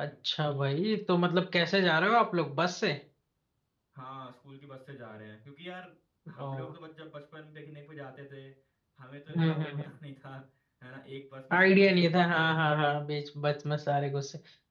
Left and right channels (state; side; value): identical; both; correlation 1.00